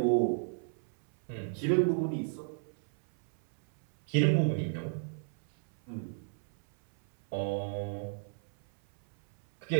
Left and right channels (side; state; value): left; silent; 55 dB below the other